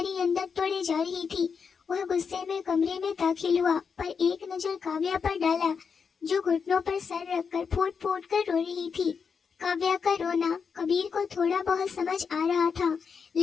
ही अंदर तोड़े जा रही थी। वह गुस्से में कमरे में दाखिल हुआ पर एक नजर काव्या पर डाला जो घुटनों पर सर रखकर फूट फूट कर रो रही थी। काव्या का रोना कबीर को थोड़ा बहुत समझ आ रहा था,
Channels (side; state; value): right; quieter; 6.0 dB